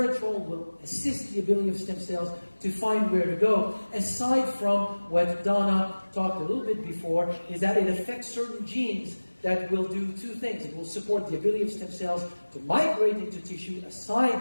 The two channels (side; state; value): both; inverted; correlation -1.00